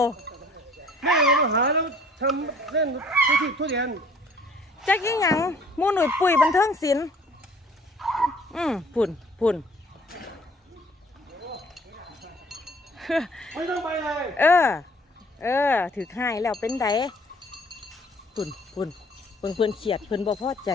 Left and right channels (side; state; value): both; normal; correlation 0.55